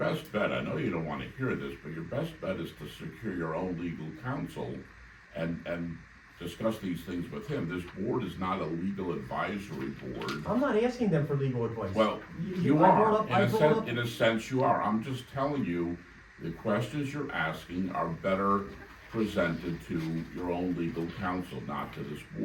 bet, I know you don't wanna hear this, but your best bet is to secure your own legal counsel and discuss these things with him. This board is not a legal advisory board. I'm not asking them for legal advice. Well, I you brought are, up- I brought up- in a sense you are. I'm just telling you, the questions you're asking are better presented to your own legal counsel, not to this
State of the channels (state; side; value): identical; both; correlation 1.00